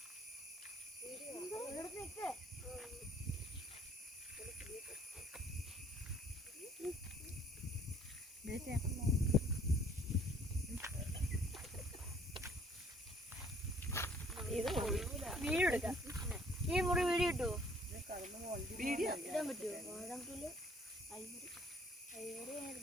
വീഡിയോ എടുക്കാം. ഈ മുറി വീഡിയോ കിട്ടുമോ? വീഡിയോ ഇടാൻ പറ്റുമോ?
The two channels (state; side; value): normal; both; correlation 0.59